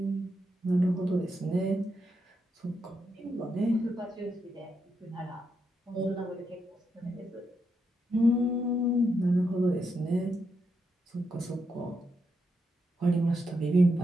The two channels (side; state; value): both; normal; correlation 0.82